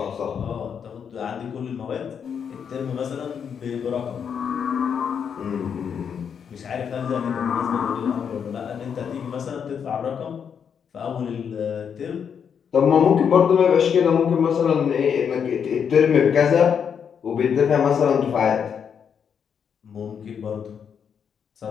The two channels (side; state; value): right; quieter; 7.4 dB